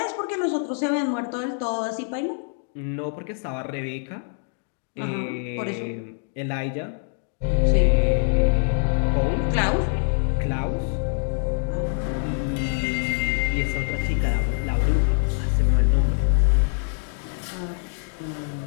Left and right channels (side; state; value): right; silent; 55 dB below the other